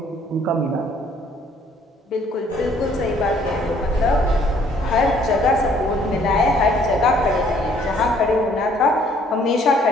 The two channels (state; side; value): normal; both; correlation 0.61